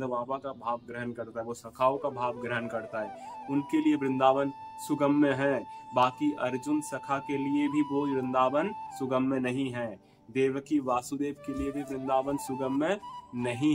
बाबा का भाव ग्रहण करता है, वो सखाओं का भाव ग्रहण करता है। उनके लिए वृंदावन सुगम्य है। बाकी अर्जुन सखा के लिए भी वो वृंदावन सुगम्य नहीं है। देवकी वासुदेव के लिए भी वृंदावन सुगम्य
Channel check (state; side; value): identical; both; correlation 1.00